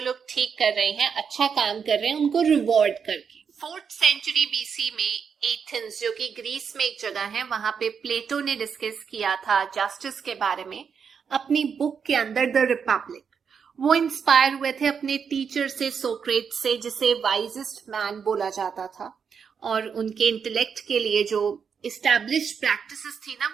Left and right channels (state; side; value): quieter; left; 6.6 dB